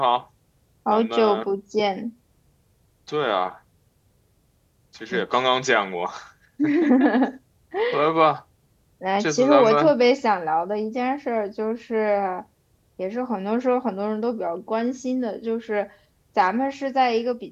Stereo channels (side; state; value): both; identical; correlation 1.00